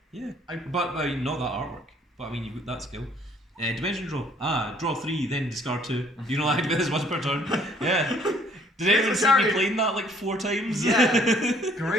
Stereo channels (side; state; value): both; normal; correlation 0.60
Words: Yeah. But not that artwork. But I mean, you've got that skill. Dimension draw. Draw 3, then discard 2. You can only activate this once per turn. Yeah. Did anyone see me playing that like 4 times? Yeah.